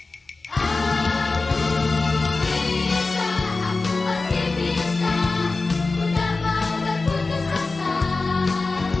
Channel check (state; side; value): quieter; right; 3.7 dB